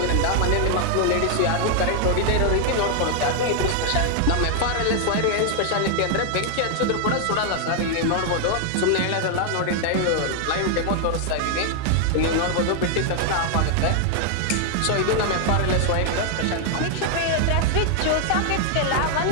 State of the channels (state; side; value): different; both; correlation 0.00